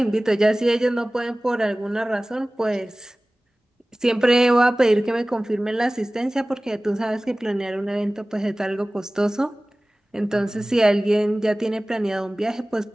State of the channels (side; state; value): both; normal; correlation 0.98